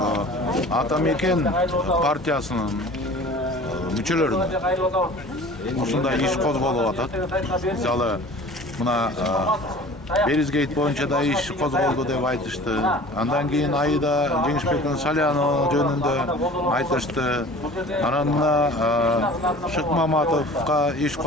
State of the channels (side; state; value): both; normal; correlation 0.43